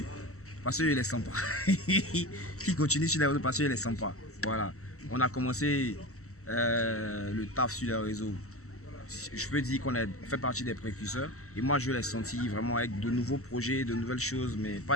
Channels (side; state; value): right; late; 0.64 ms